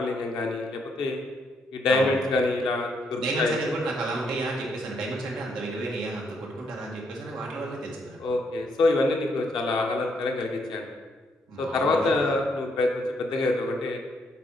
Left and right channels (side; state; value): both; normal; correlation 0.74